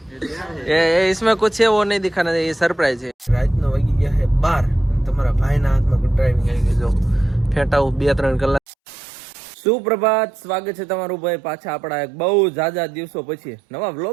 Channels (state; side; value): drops out; left; at 8.6 s